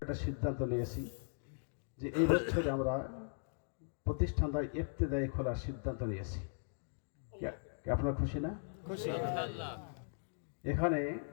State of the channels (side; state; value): right; silent; digital silence